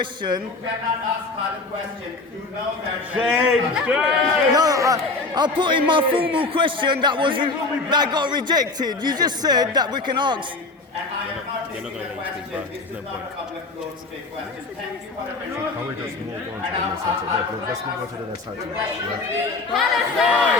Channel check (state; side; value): quieter; right; 3.6 dB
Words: You cannot ask the question. You know that. No, I put in my formal question that got rejected. You just said that we can ask. And I am not taking the question. This is not a public floor to take questions. Thank you for attending. Can we just move on to the next item? Let's move on to the next item.